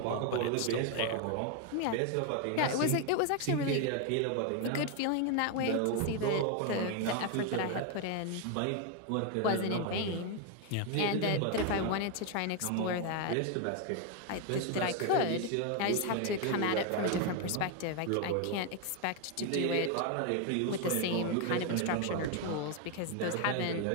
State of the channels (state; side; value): different; both; correlation 0.01